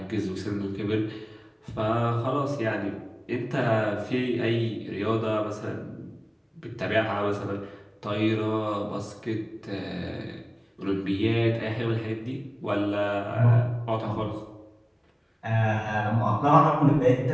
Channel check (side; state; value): both; identical; correlation 1.00